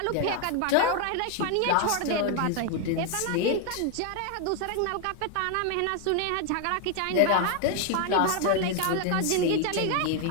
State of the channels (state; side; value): different; both; correlation 0.01